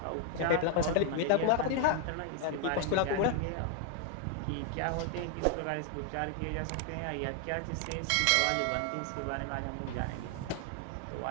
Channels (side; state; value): both; different; correlation 0.00